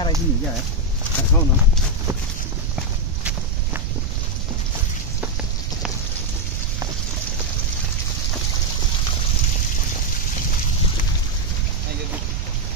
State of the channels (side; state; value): right; noise; rumble, 2 dB below the sound